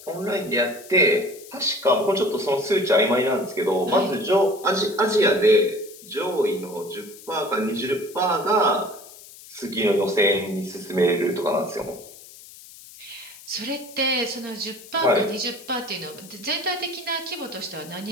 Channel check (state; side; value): noise; left; hiss, 19 dB below the sound